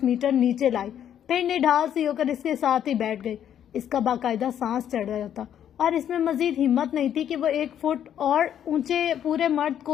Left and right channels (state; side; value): quieter; right; 9.9 dB